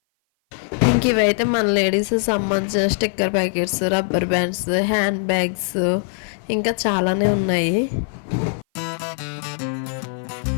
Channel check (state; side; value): silent; right; 57 dB below the other